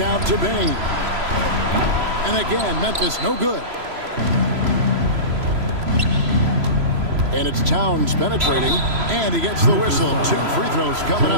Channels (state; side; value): late; left; 3.0 ms